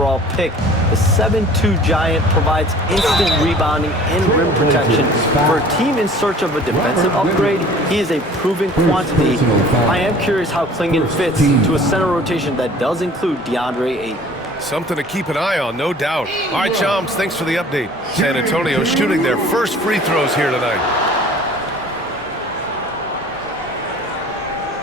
pick. The 7'2" giant provides instant rebounding and rim protection. For a team in search of a defensive upgrade, he is a proven quantity. I am curious how Klingen fits to a center rotation that does include DeAndre Ayton. Something to keep an eye on, no doubt. All right, Shams, thanks for the update. San Antonio shooting their first free throws here tonight.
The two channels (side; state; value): both; normal; correlation 0.48